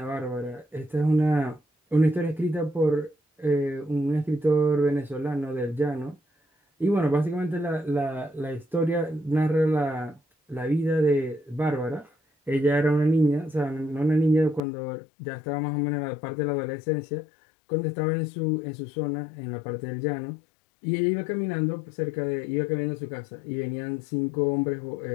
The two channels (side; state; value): right; drops out; at 14.6 s